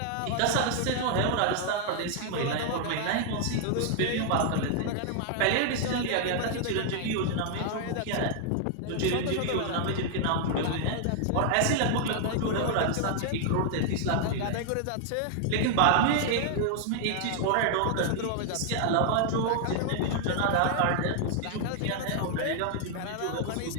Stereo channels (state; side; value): different; both; correlation 0.00